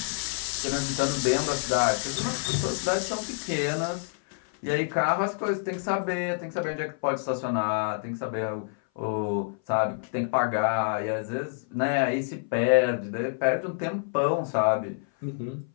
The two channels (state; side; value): silent; right; 57 dB below the other